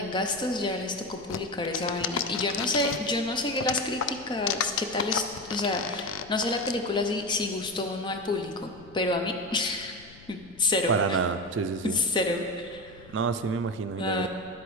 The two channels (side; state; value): left; noise; rumble, 22 dB below the sound